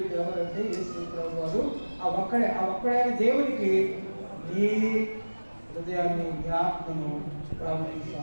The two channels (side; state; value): both; inverted; correlation -1.00